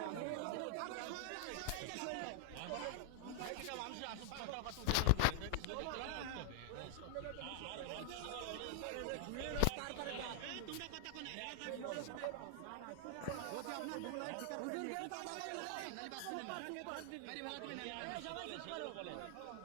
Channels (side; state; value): both; different; correlation 0.00